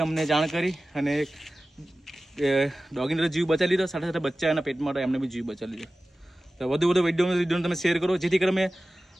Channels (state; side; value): normal; both; correlation 0.96